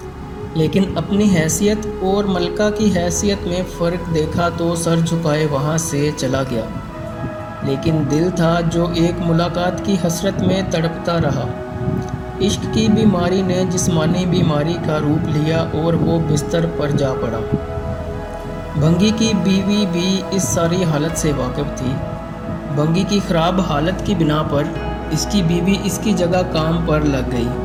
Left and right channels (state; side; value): identical; both; correlation 1.00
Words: لیکن اپنی حیثیت اور ملکہ کی حیثیت میں فرق دیکھا تو سر جھکائے وہاں سے چلا گیا، لیکن دل تھا جو ایک ملاقات کی حسرت میں تڑپتا رہا۔ عشق کی بیماری نے جسمانی بیماری کا روپ لیا اور وہ بستر پر جا پڑا۔ بھنگی کی بیوی بھی اس ساری حالت سے واقف تھی۔ بھنگی کی خراب حالت کی بنا پر اس کی بیوی اس کی جگہ کام پر لگ گئی۔